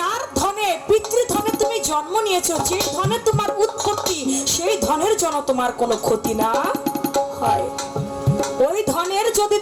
ধনে পিতৃধনে তুমি জন্ম নিয়েছো, যে ধনে তোমার উৎপত্তি, সেই ধনের জন্য তোমার কোনো ক্ষতি না হয়। ওই ধনের যদি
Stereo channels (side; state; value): both; identical; correlation 1.00